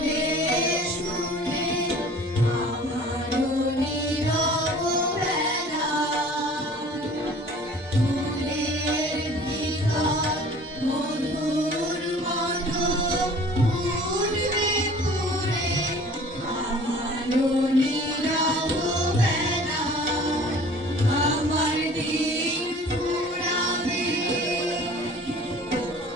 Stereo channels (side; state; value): both; normal; correlation 0.48